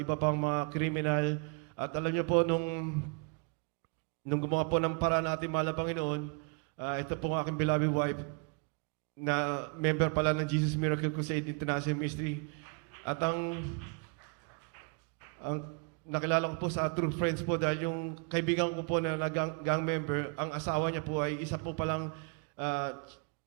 pang mga kriminal. At alam niyo po, nung gumawa po ng paraan natin, mahal na Panginoon, ito po ang aking beloved wife, na member pala ng Jesus Miracle Crusade International Ministry. At ang nakilala ko po sa True Friends po dahil yung kaibigan ko po na gang member, ang asawa niya po ay isa po palang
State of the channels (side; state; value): left; quieter; 33.8 dB